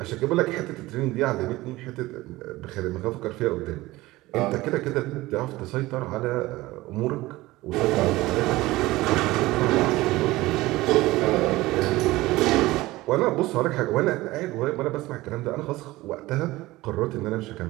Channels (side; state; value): left; quieter; 18.8 dB